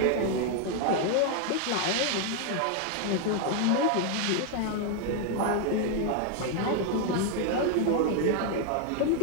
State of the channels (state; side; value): different; both; correlation 0.00